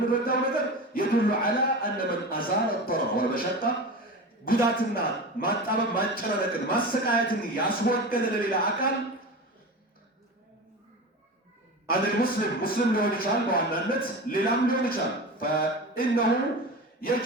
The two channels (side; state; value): both; normal; correlation 0.29